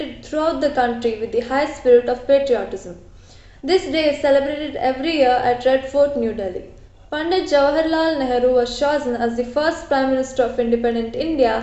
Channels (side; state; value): both; identical; correlation 1.00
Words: throughout the country with the high spirit of patriotism. This day is celebrated every year at Red Fort, New Delhi. Pandit Jawaharlal Nehru was chosen as the first Prime Minister of independent